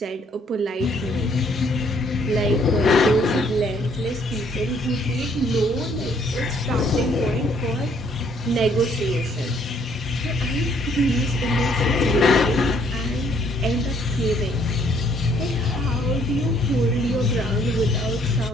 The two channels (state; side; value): normal; both; correlation 0.65